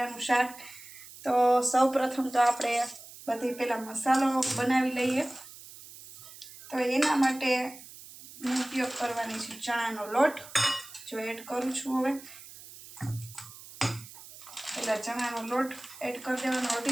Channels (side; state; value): right; noise; hiss, 17 dB below the sound